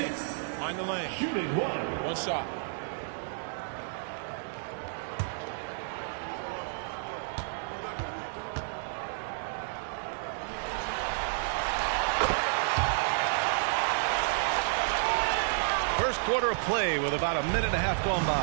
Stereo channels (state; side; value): silent; left; digital silence